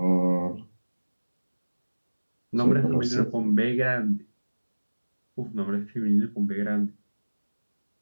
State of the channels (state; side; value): inverted; both; correlation -1.00